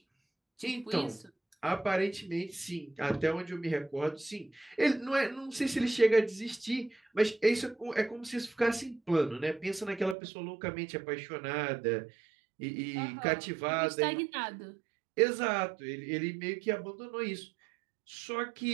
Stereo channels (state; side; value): drops out; left; at 10.2 s